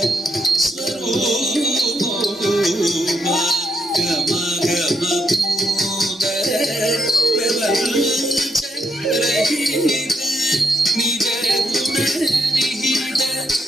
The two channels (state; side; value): normal; both; correlation 0.77